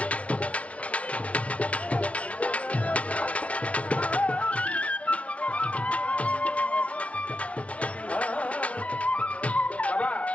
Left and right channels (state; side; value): late; right; 0.064 ms